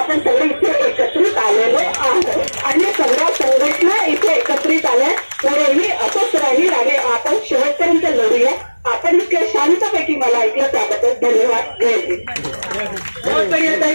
सगळे इथे एकत्रित आलेलो आहोत आणि सगळ्या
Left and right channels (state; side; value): inverted; both; correlation -1.00